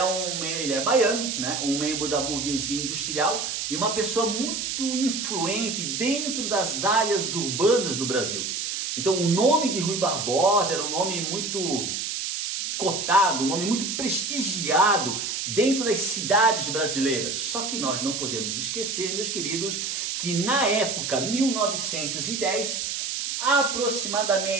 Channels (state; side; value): noise; right; hiss, 3 dB below the sound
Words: baiano, né? Um membro da burguesia industrial e uma pessoa muito influente dentro das áreas urbanas do Brasil. Então o nome de Rui Barbosa era um nome muito cotado, um nome muito prestigiado dentro das cidades brasileiras. Só que nós não podemos esquecer, meus queridos, que na época 1910,